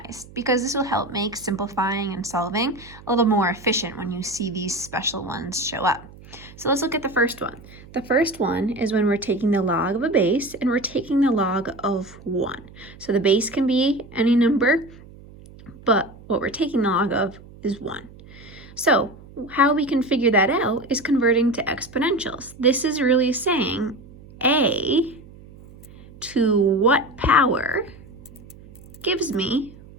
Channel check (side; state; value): right; noise; hum, 20 dB below the sound